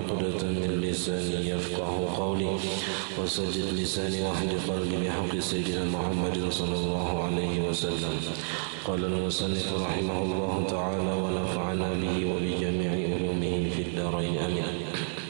min lisani yafqahu qawli wa saddid lisani wa hdi qalbi bihaqqi sayyidina Muhammadin sallallahu alaihi wasallam. Qala al-musannif rahimahullahu ta'ala wa nafa'ana bihi wa bi jami'i ulumihi fid darain amin.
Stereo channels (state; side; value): silent; left; 57 dB below the other